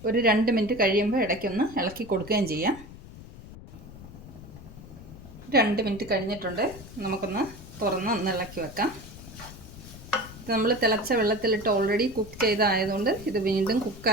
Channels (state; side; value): noise; left; rumble, 16 dB below the sound